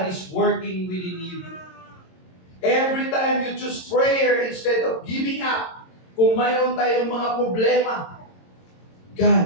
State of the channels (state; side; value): late; right; 22 ms